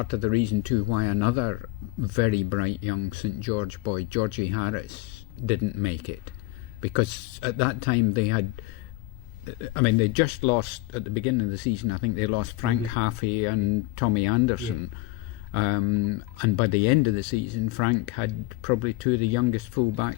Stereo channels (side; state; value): right; quieter; 20.6 dB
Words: of the reason too why another very bright young St George boy, Georgie Harris, didn't make it? Because at that time they just lost at the beginning of the season. I think they lost Frank Haffey and Tommy Anderson. And by the end of the season, Frank had probably 2 of the youngest